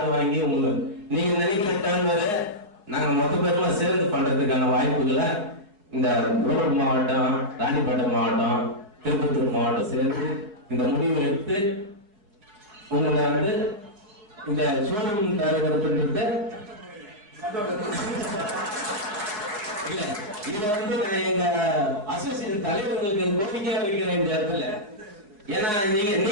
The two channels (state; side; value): late; left; 4.8 ms